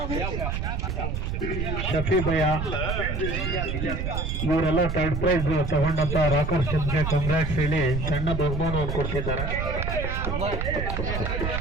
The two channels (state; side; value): noise; right; rumble, 2 dB below the sound